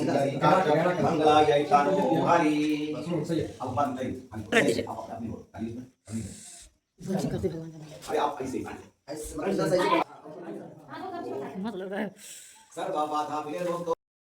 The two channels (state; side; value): identical; both; correlation 1.00